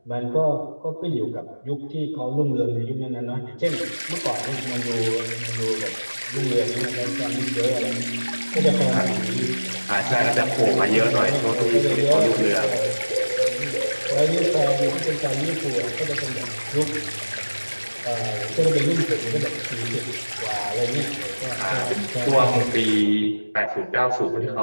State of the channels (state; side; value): inverted; both; correlation -1.00